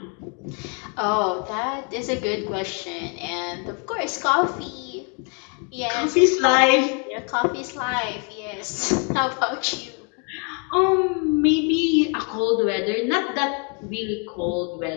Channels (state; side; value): quieter; right; 36.8 dB